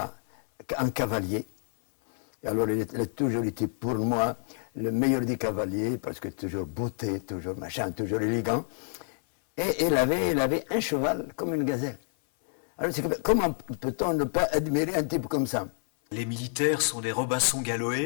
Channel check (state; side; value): silent; right; 59 dB below the other